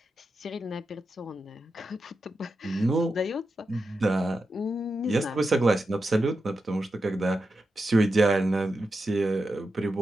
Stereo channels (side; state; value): both; normal; correlation 0.89